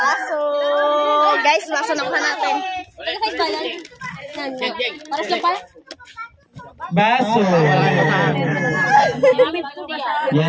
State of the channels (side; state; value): both; identical; correlation 1.00